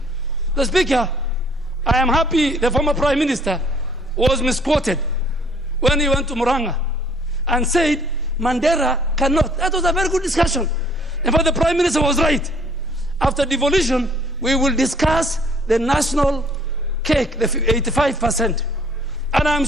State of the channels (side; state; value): both; normal; correlation 0.59